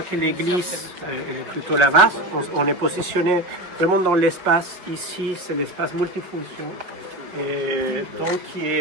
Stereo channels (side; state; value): left; late; 5.5 ms